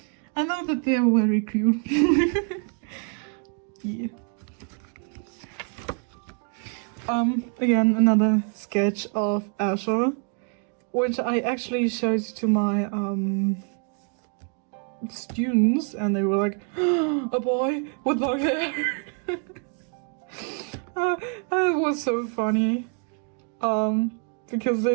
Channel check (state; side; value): quieter; left; 39.8 dB